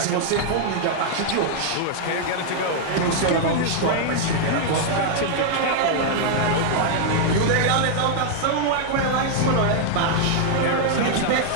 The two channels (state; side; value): different; both; correlation -0.01